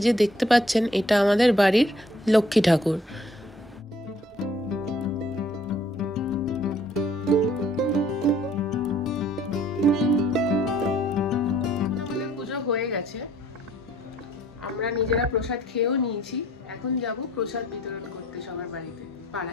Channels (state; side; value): normal; both; correlation 0.60